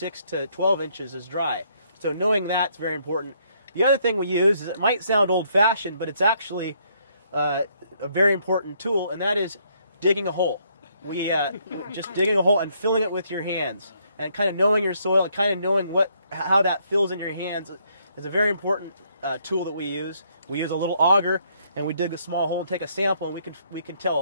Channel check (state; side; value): inverted; both; correlation -0.70